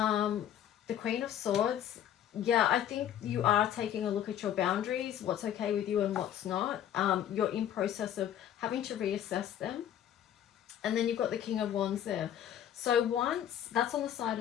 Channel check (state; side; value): quieter; right; 10.5 dB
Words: Queen of Swords. Yeah, I think you are taking a look at your boundaries, what's okay with you and what's not. You're in process of having to reassess them. And then you've got the King of Wands there. So once, that's on the side